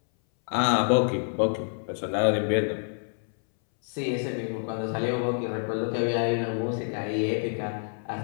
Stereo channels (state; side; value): silent; right; 60 dB below the other